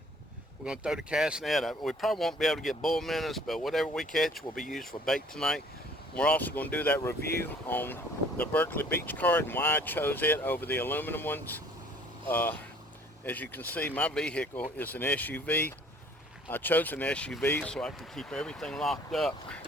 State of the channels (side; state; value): both; normal; correlation 0.54